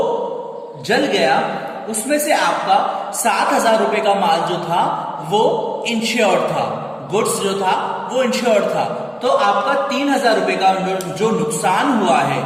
जल गया, उसमें से आपका 7,000 रुपए का माल जो था वो इंश्योर्ड था, गुड्स जो था वो इंश्योर्ड था, तो आपका 3,000 रुपए का जो नुकसान हुआ है,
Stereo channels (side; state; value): both; identical; correlation 1.00